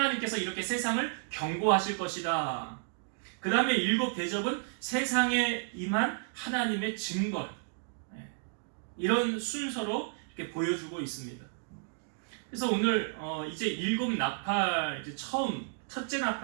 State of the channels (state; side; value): silent; left; digital silence